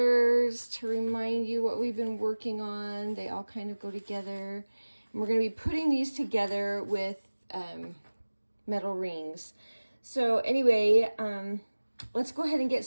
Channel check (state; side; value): inverted; both; correlation -1.00